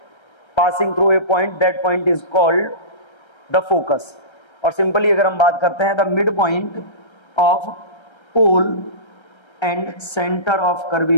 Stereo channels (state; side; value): late; right; 1.3 ms